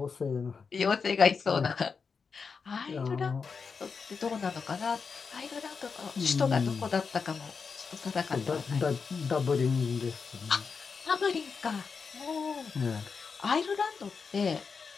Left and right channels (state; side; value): quieter; right; 5.4 dB